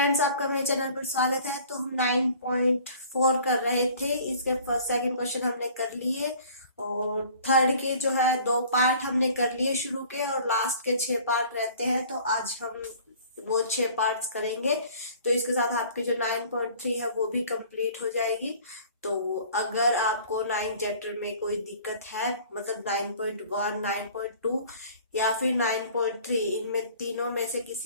आपका मेरे channel पर स्वागत है। तो हम 9.4 कर रहे थे। इसके फर्स्ट सेकंड क्वेश्चन हमने कर लिए और थर्ड के जो है 2 पार्ट हमने कर लिए शुरू के, और लास्ट के 6 पार्ट रहते हैं। तो आज हम वो 6 पार्ट्स करेंगे। तो इसके साथ आपकी जो 9.3 है वो भी कंप्लीट हो जाएगी। तो अगर आपको 9 चैप्टर में कोई दिक्कत है, मतलब 9.1, 9.2 या फिर 9.3, इनमें तीनों में से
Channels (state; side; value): inverted; both; correlation -0.50